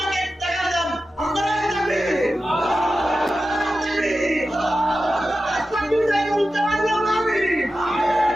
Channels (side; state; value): both; normal; correlation 0.93